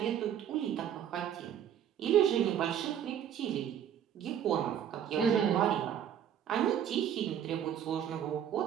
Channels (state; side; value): quieter; left; 9.5 dB